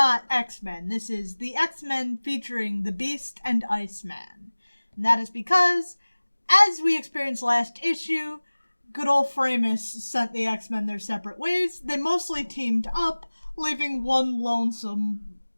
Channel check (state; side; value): inverted; both; correlation -1.00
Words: X-Men. This is the X-Men featuring the Beast and Iceman. And that is because, as we experienced last issue, good old Framos sent the X-Men their separate ways. They mostly teamed up, leaving one lonesome